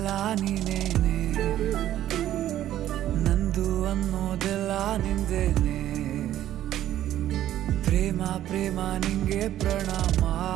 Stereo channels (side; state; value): left; quieter; 12.5 dB